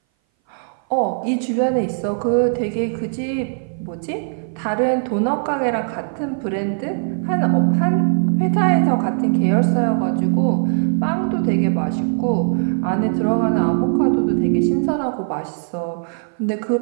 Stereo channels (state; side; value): silent; left; 59 dB below the other